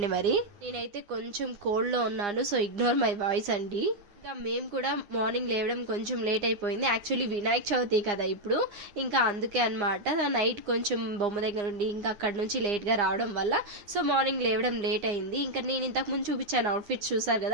మరి నేనైతే కొంచెం కోల్డ్ లో ఉన్నాను, సో ఇగ్నోర్ మై వాయిస్ అండి. ఇంకా మేము కూడా మార్నింగ్ లేవడం కొంచెం లేట్ అయిపోయింది. యాక్చువల్లీ వినాయక చవితి కదా ఇప్పుడు, ఇంకా అందుకే అనమాట. నైట్ కొంచెం బొమ్మ దగ్గర ఉండి ఇంకా అక్కడ నుంచి లేట్గా రావడం వల్ల సో మార్నింగ్ లేవడం లేట్ అయింది. ఇంకా నేను ఇంతకుముందు చూపించాను అవుట్ఫిట్స్ చూసారు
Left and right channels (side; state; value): left; late; 9.7 ms